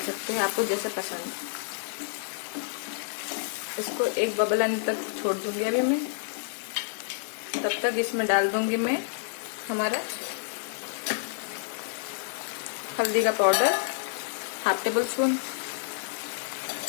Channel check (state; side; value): silent; right; digital silence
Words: हैं, आपको जैसे पसंद। इसको एक बबल आने तक छोड़ दूंगी अभी मैं। तब तक इसमें डाल दूंगी मैं हमारा हल्दी का पाउडर 1/2 टेबलस्पून,